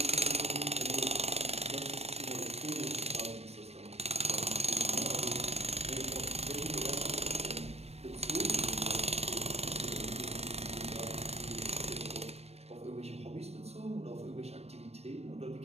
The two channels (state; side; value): late; left; 0.31 ms